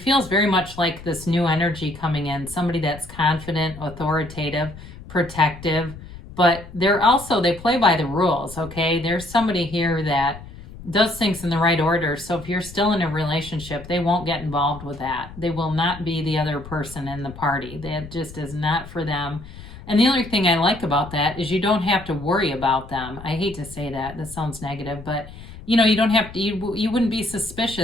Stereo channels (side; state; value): left; noise; rumble, 15 dB below the sound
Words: feels very much like this new energy coming in, somebody that's confident, authoritative, protective, but they play by the rules, okay? There's somebody here that does things in the right order. So if you're still in a relationship, they won't get involved with that. They will not be the other person in the party. That just is not for them. And the other thing I like about that is you don't have to worry about them. I hate to say that. That sounds negative, but you know, you don't have to, you wouldn't be